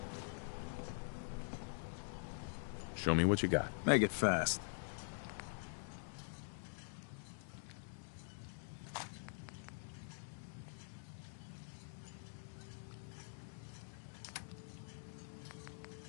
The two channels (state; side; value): silent; right; digital silence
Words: Show me what you got. Make it fast.